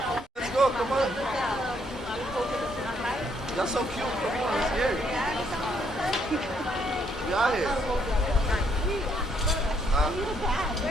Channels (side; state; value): both; normal; correlation 0.71